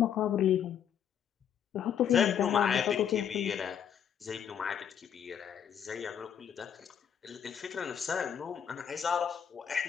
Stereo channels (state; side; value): quieter; right; 8.6 dB